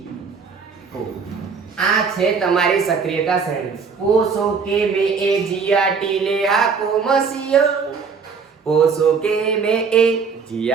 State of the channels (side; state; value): left; quieter; 5.5 dB